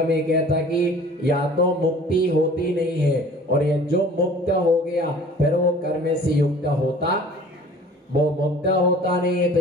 में कहता कि या तो मुक्ति होती नहीं है, और ये जो मुक्त हो गया फिर वो कर्म से युक्त होता, वो मुक्त होता नहीं है। तो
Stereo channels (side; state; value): both; normal; correlation 0.48